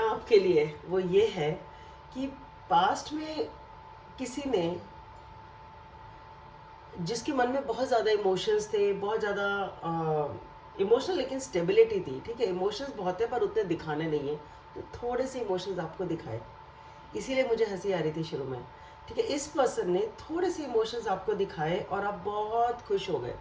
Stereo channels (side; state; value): both; identical; correlation 1.00